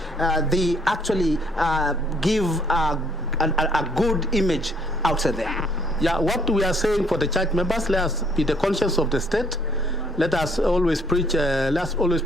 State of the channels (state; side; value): normal; both; correlation 0.65